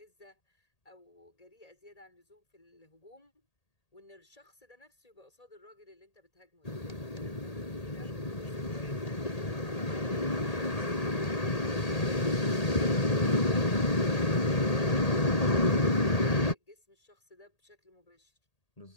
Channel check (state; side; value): late; right; 1.8 ms